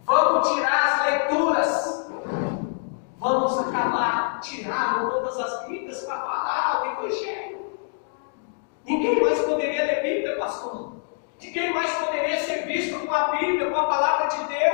vamos tirar as leituras, vamos acabar, tiraram todas as Bíblias para parar o evangelho. Ninguém mais poderia ler Bíblia, pastor. Ninguém mais poderia ser visto com a Bíblia, com a palavra de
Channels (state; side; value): silent; right; 62 dB below the other